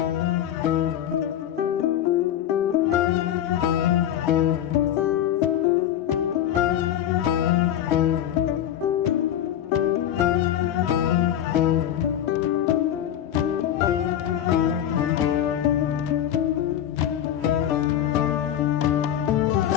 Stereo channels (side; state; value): right; quieter; 10.8 dB